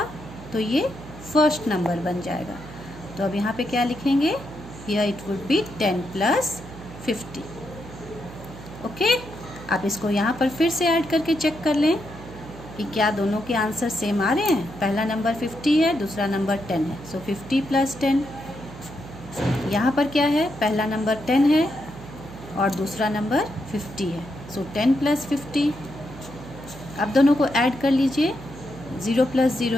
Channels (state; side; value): noise; right; hum, 15 dB below the sound